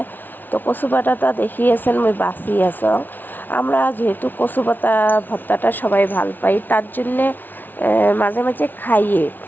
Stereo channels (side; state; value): right; late; 0.088 ms